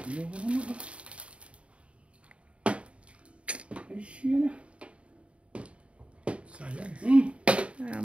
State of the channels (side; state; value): left; late; 0.061 ms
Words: Ay, siya na. Sayang.